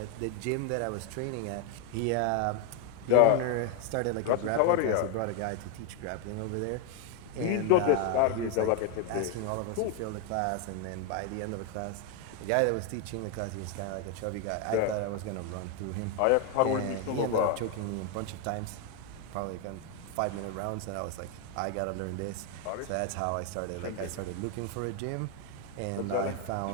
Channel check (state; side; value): different; both; correlation 0.01